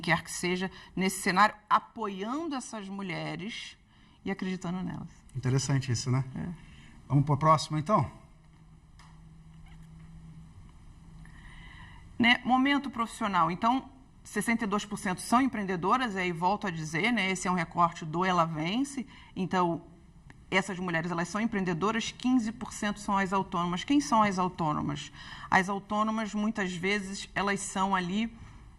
quer que seja, nesse cenário, apoiando essas mulheres e acreditando nelas. Interessante isso, né? Vamos para o próximo, então? Né? Momento profissional. Então, 62% são empreendedoras, e aí volto a dizer, né, esse é um recorte do Ela Vence, então essas mulheres elas são empreendedoras, 15% são as autônomas. Quem são as autônomas? As autônomas, muitas vezes, elas são ali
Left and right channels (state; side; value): identical; both; correlation 1.00